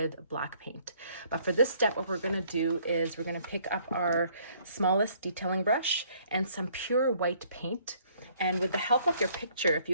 black paint. But for this step, what we're going to do is we're going to pick up our smallest detailing brush and some pure white paint. And with the help of your picture, if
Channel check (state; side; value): inverted; both; correlation -0.62